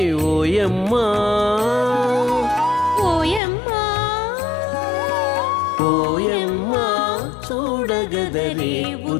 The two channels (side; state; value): right; drops out; at 3.4 s